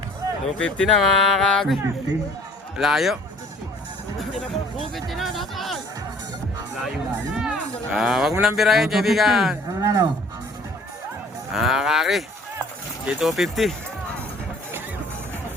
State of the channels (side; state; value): both; normal; correlation 0.53